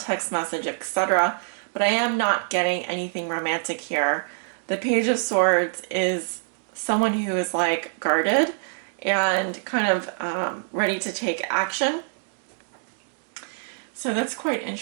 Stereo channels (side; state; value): left; silent; digital silence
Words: message, etc. But I am not getting anything romantic here. The Page of Swords is someone who is like guarded and kind of ready to take action. So that's quite